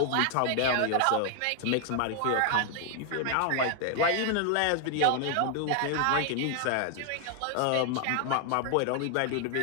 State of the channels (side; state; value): both; different; correlation 0.00